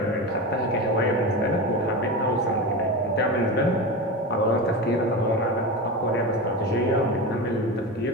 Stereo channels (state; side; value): normal; both; correlation 0.23